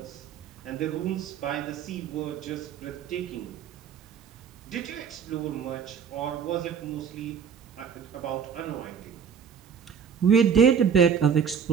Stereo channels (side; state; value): left; quieter; 7.1 dB